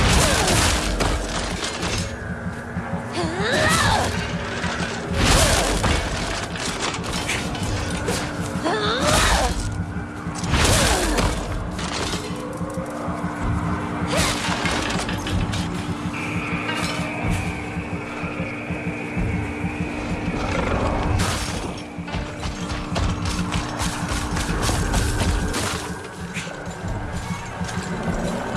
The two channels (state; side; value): identical; both; correlation 1.00